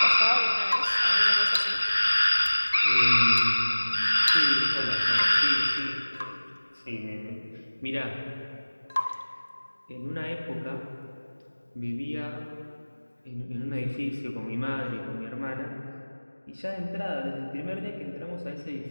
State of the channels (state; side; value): inverted; both; correlation -1.00